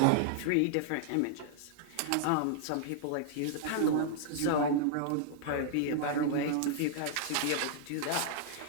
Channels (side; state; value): both; different; correlation -0.01